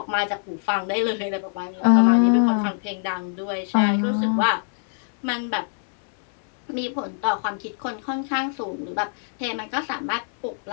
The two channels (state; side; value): silent; right; 63 dB below the other